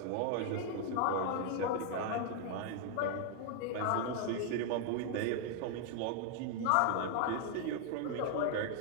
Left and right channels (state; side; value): different; both; correlation 0.00